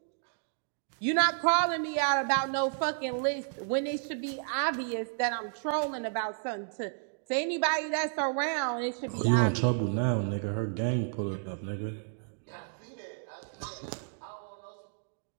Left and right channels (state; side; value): silent; left; digital silence